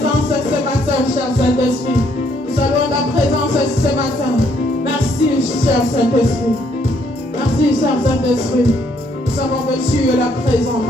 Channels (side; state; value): both; normal; correlation 0.69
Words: ce matin, cher Saint-Esprit. Nous saluons ta présence ce matin. Merci, cher Saint-Esprit. Merci, cher Saint-Esprit. Nous savons que tu es là présent